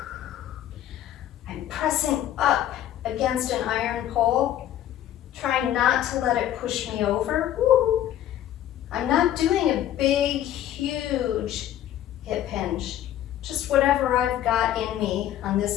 I'm pressing up against an iron pole, trying not to let it push me over. Woo. I'm not doing a big, huge hip hinge, just whatever I've got in me on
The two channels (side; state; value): right; quieter; 11.9 dB